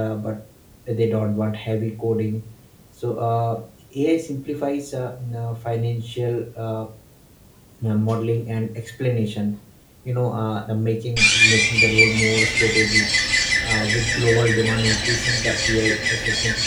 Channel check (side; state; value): both; identical; correlation 1.00